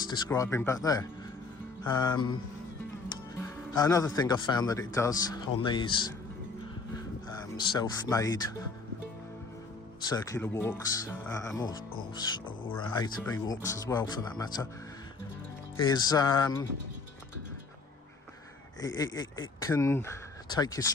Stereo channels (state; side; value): quieter; right; 4.1 dB